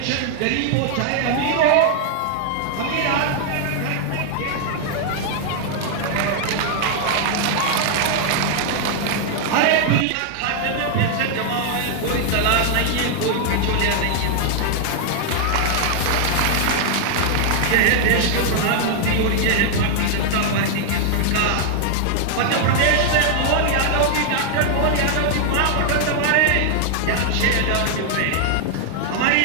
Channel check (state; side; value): different; both; correlation 0.00